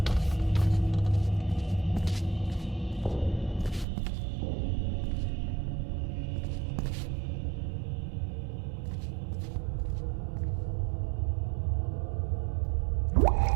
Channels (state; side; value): drops out; left; at 3.9 s